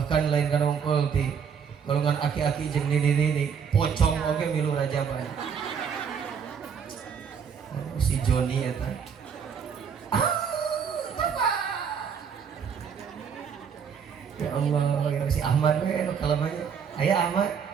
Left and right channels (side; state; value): left; quieter; 6.9 dB